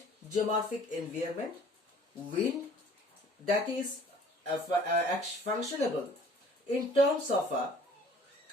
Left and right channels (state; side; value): normal; both; correlation 0.53